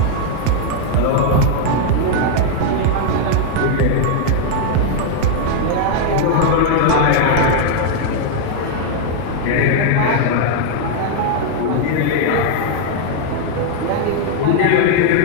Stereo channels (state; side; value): different; both; correlation 0.00